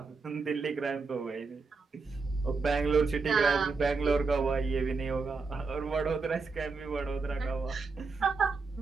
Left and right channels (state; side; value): quieter; left; 4.3 dB